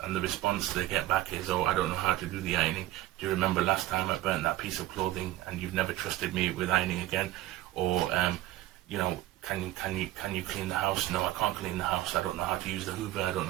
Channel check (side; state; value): left; quieter; 15.4 dB